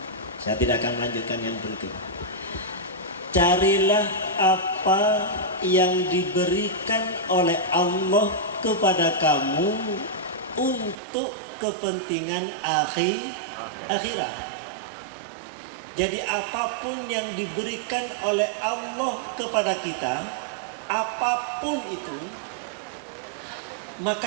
Saya tidak akan melanjutkan yang berikut. Carilah apa yang diberikan oleh Allah kepada kamu untuk kepentingan akhirat. Jadi apapun yang diberikan oleh Allah kepada kita, apapun itu,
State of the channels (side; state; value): left; drops out; at 11.0 s